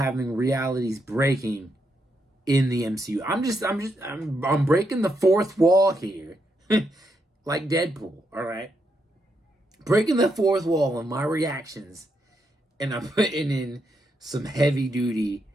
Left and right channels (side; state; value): both; normal; correlation 0.80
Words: realities breaking in the MCU. I'm breaking the fourth wall here, like Deadpool, all right? Breaking the fourth wall in my reactions, and I'm putting in some heavy-duty